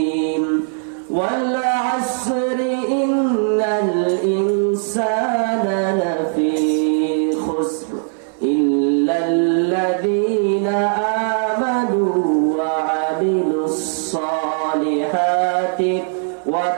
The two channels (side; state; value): left; silent; 60 dB below the other